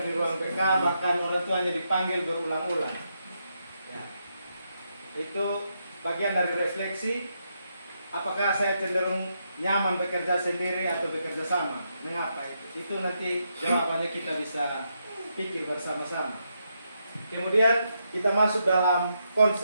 di ruang BK, bahkan orang tuanya dipanggil berulang-ulang. Ya. Itu bagian dari refleksi, apakah saya cenderung nyaman bekerja sendiri atau bekerja sama? Mengapa itu? Itu nanti jawabannya kita bisa pikir bersama-sama. Kemudian kita masuk dalam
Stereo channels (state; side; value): inverted; both; correlation -0.81